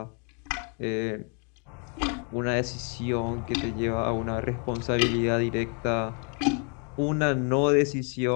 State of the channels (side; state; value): right; quieter; 39.2 dB